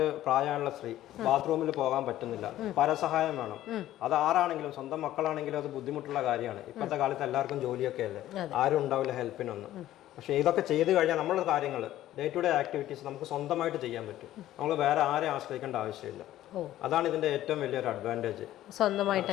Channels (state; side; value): quieter; right; 13.7 dB